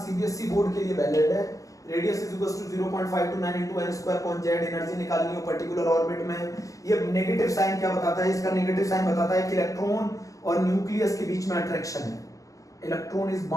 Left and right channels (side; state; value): right; late; 0.16 ms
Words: सीबीएसई बोर्ड के लिए वैलिड है। Radius is equal to 0.529 into n square upon z, energy निकालनी हो पर्टिकुलर ऑर्बिट में। ये नेगेटिव साइन क्या बताता है, इसका नेगेटिव साइन बताता है कि इलेक्ट्रॉन और न्यूक्लियस के बीच में अट्रैक्शन है, electron is